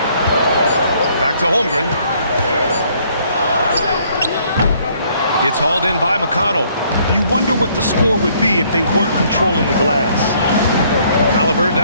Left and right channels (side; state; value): both; inverted; correlation -0.64